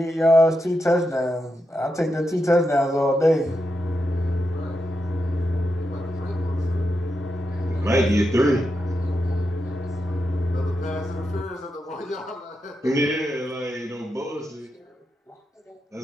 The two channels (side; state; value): both; normal; correlation 0.86